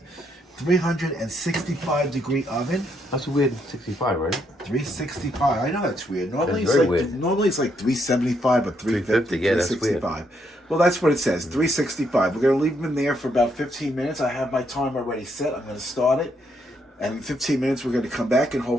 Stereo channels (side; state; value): both; normal; correlation 0.75